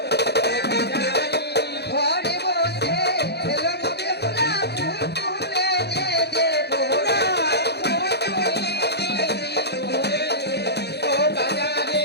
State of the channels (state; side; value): late; right; 0.48 ms